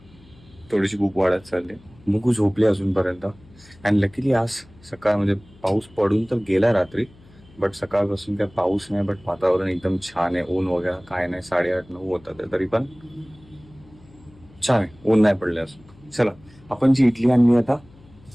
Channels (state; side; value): noise; left; hum, 26 dB below the sound